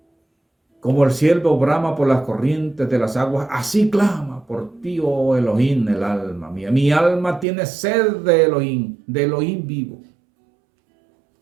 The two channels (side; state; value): left; drops out; at 7.5 s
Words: como el ciervo brama por las corrientes de las aguas, así clama por ti, oh Elohim, el alma mía. Mi alma tiene sed de Elohim vivo.